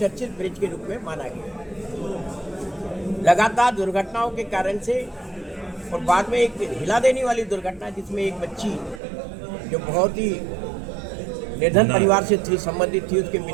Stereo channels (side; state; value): left; drops out; at 9.0 s